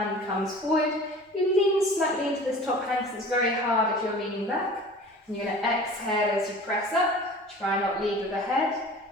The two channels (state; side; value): normal; both; correlation 0.42